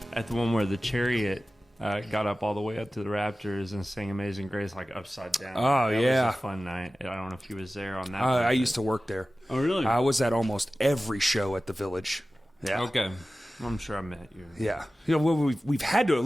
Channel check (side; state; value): both; normal; correlation 0.96